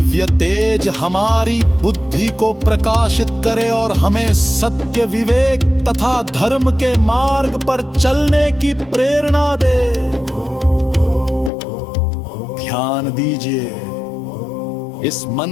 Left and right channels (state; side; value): drops out; right; at 11.5 s